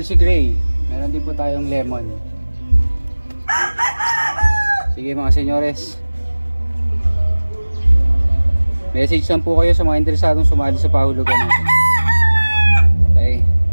Gray. Meron din po tayong lemon. Sige mga senyores, message lang po kayo sa mga interesadong sumali sa pahulugan natin. Okay,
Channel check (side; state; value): both; inverted; correlation -1.00